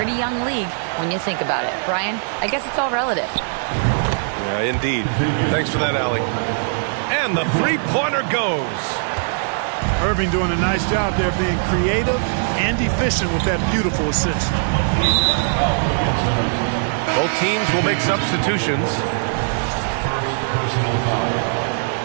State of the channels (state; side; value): silent; left; digital silence